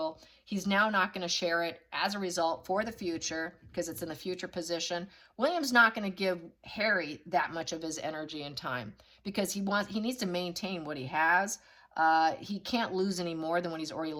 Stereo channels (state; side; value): identical; both; correlation 1.00